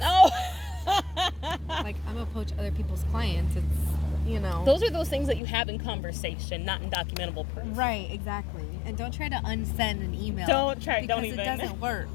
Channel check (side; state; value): right; drops out; at 5.4 s